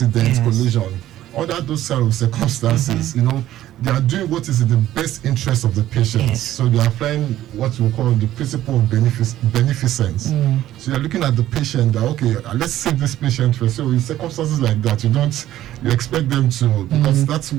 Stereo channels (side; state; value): left; quieter; 13.5 dB